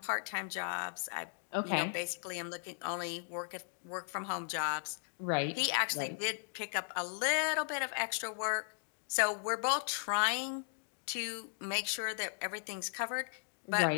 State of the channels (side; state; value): right; silent; digital silence